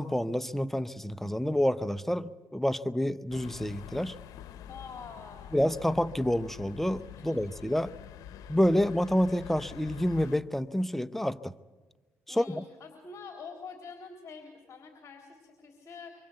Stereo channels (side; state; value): both; normal; correlation 0.97